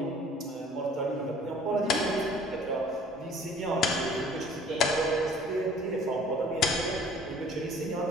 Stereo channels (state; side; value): normal; both; correlation 0.53